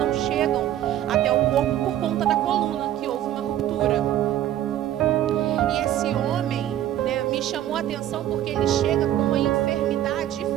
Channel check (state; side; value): quieter; left; 12.3 dB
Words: chegam até o corpo por conta da coluna, que houve uma ruptura. E esse homem, né, me chamou a atenção porque ele chega com uma enfermidade